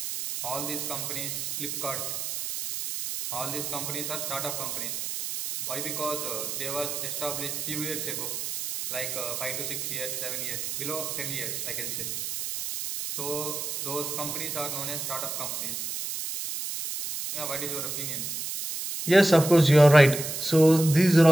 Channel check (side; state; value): right; noise; hiss, 4 dB below the sound